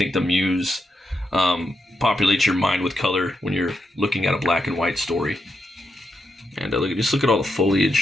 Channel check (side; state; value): both; normal; correlation 0.84